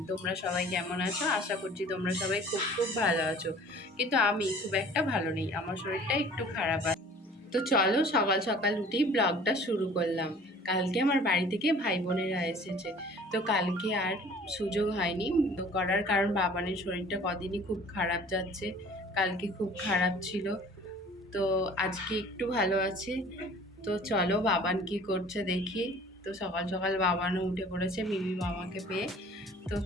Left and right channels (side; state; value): both; normal; correlation 0.49